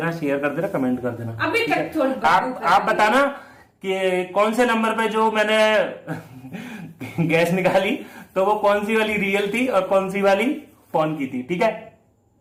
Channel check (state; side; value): identical; both; correlation 1.00